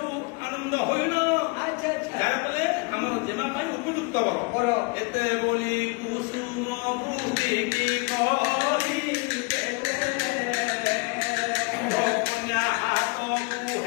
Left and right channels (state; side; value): quieter; right; 28.2 dB